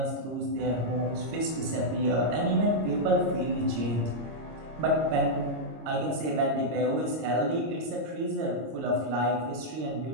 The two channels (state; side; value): late; left; 25 ms